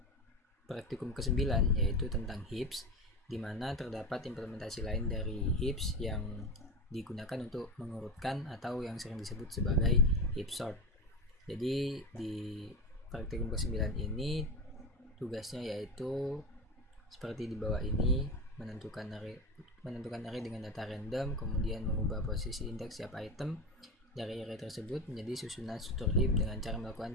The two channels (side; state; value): both; normal; correlation 0.22